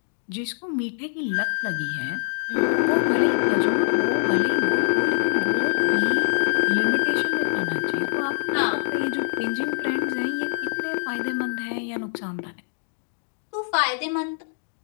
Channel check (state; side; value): silent; right; digital silence